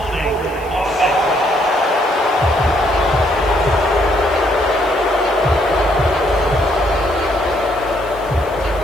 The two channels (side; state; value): left; noise; hiss, 25 dB below the sound